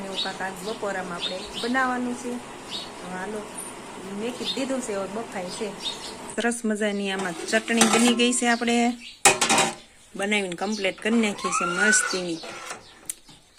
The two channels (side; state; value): both; identical; correlation 1.00